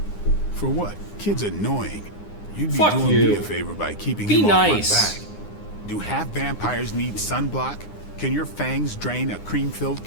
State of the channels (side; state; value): right; late; 9.8 ms